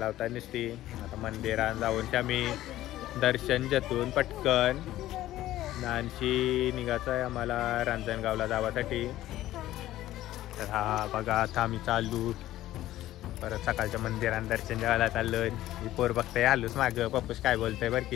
नसती. आता मंदिरात जाऊन आम्ही दर्शन घेतून पटकन नानशी निघायचं आहे आम्हाला रांजणगावला जावासाठी. तर हा बघा आता आम्ही चालू परत सकाळच्या मंदिरात दर्शन घ्यायला चाललोय. मी पोर बघताय आलोच मागं पप्पूस काय बोलतोय बरं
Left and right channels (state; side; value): quieter; right; 14.6 dB